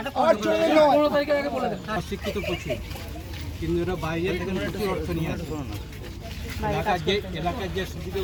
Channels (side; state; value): both; identical; correlation 1.00